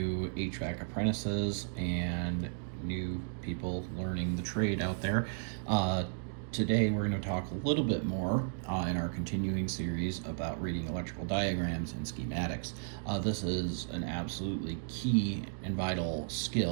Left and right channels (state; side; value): silent; left; digital silence